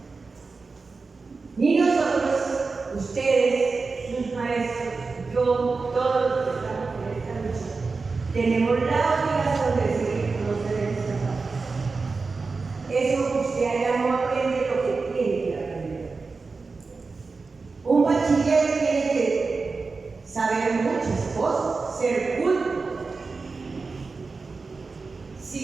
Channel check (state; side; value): quieter; left; 4.2 dB